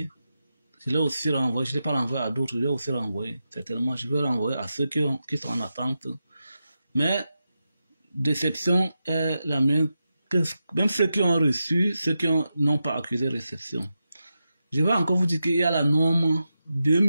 je ne l'ai pas renvoyé à d'autres, je l'ai aussi renvoyé. Certainement, je vais renvoyer à ceux qui sont en attente. Mais déception est la mienne, que même ceux qui ont reçu, ceux qui n'ont pas accusé réception. Je vais encore vous dire qu'il y a la norme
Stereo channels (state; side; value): inverted; both; correlation -0.89